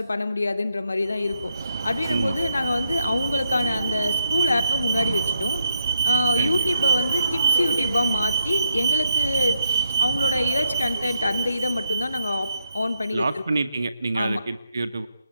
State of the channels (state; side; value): inverted; both; correlation -0.79